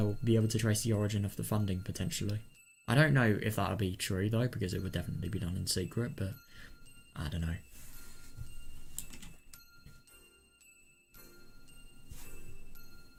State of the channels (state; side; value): identical; both; correlation 1.00